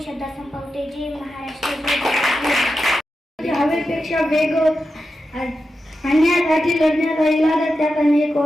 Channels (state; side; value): normal; both; correlation 0.90